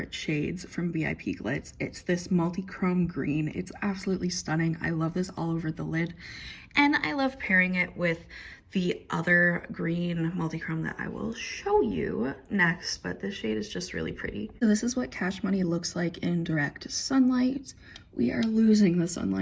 shades from VIPGLITZ. It's this multi-chrome green. It's absolutely stunning. I love this all over the lid, and I love pairing it with the other green multi-chrome that I will show you next, but this shade is just really pretty. So this is what Cash Money looks like in direct sunlight. We are losing the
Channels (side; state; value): both; identical; correlation 1.00